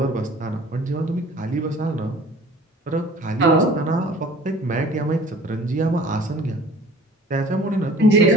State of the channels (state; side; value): normal; both; correlation 0.48